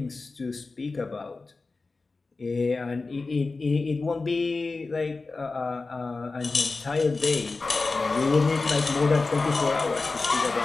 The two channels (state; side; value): quieter; right; 3.8 dB